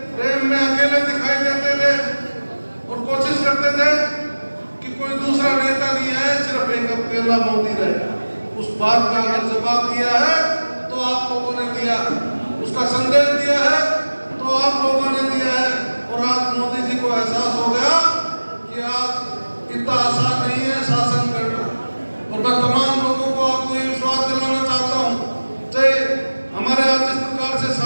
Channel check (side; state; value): both; inverted; correlation -1.00